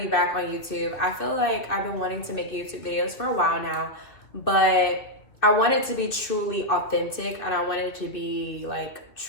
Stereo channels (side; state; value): right; late; 2.8 ms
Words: be back on YouTube. I feel like I've been wanting to make YouTube videos for a while now, but I want it to be truly authentic and I want it to be like